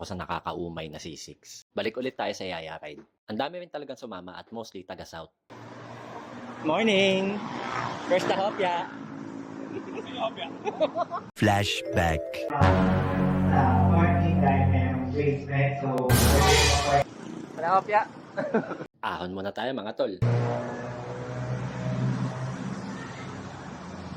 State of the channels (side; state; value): both; identical; correlation 1.00